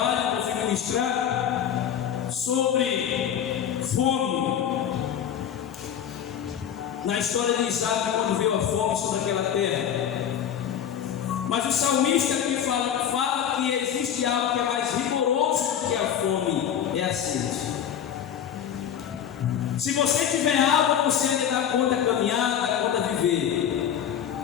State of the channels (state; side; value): quieter; right; 9.2 dB